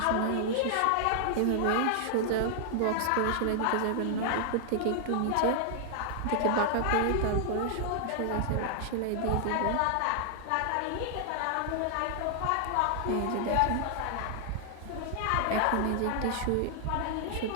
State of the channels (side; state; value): both; different; correlation 0.00